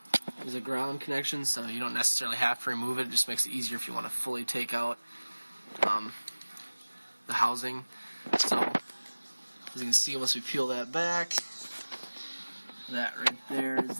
ground connection, so you don't necessarily have to remove it. It just makes it easier if you want to fully take out the housing. So as you can see, once we peel that back, that right there is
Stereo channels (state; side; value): inverted; both; correlation -1.00